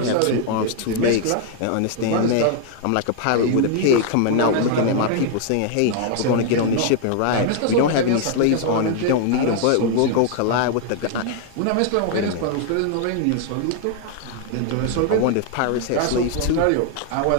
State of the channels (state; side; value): different; both; correlation 0.00